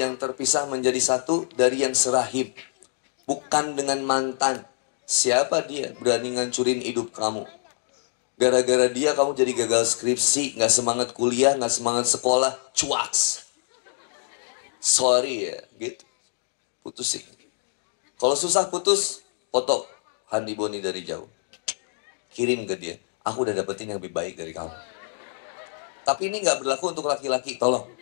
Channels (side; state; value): right; silent; digital silence